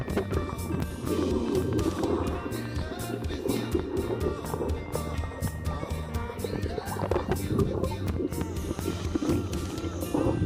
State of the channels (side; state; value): both; identical; correlation 1.00